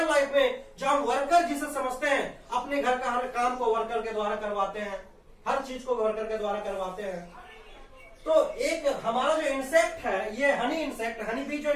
लाइफ में जो हम वर्कर जिसे समझते हैं, अपने घर का हर काम को वर्कर के द्वारा करवाते हैं, हर चीज को वर्कर के द्वारा करवाते हैं। तो एक हमारा जो इंसेक्ट है, ये हनी इंसेक्ट, हनी बी जो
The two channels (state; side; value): identical; both; correlation 1.00